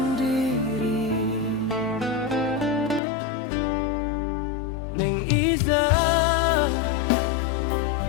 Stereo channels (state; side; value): drops out; right; at 3.0 s